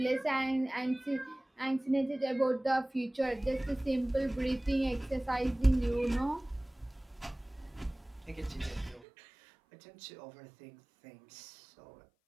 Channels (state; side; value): drops out; left; at 9.1 s